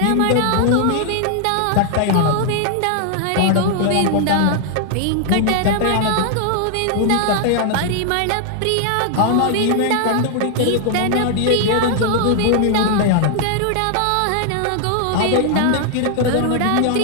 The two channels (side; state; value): both; different; correlation 0.00